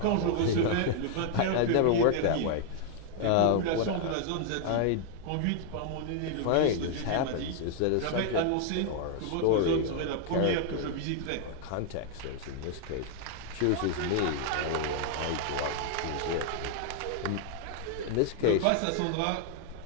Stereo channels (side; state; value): both; different; correlation 0.00